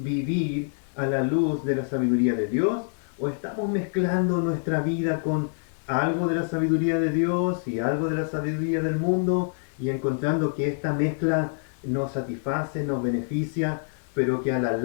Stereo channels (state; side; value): silent; right; 61 dB below the other